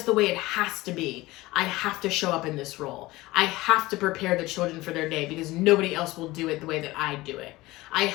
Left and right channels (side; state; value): right; quieter; 19.4 dB